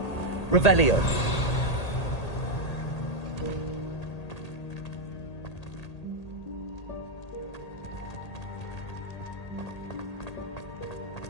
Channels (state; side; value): late; right; 1.8 ms